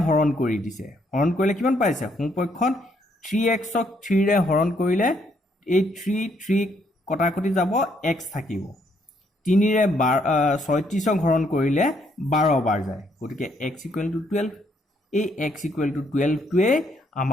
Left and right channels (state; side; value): normal; both; correlation 0.71